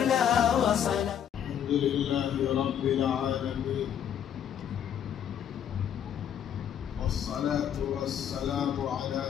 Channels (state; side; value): quieter; right; 9.2 dB